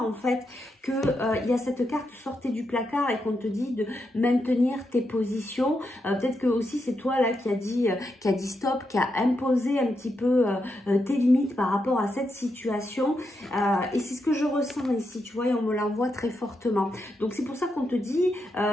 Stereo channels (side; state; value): both; normal; correlation 0.84